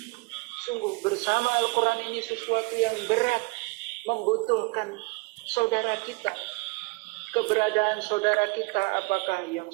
Sungguh bersama Al-Quran ini sesuatu yang berat, membutuhkan saudara kita. Keberadaan saudara kita, apakah yang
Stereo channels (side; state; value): left; quieter; 27.4 dB